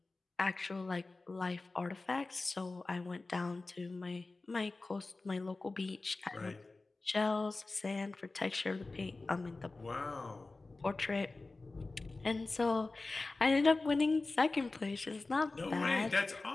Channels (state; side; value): quieter; right; 3.4 dB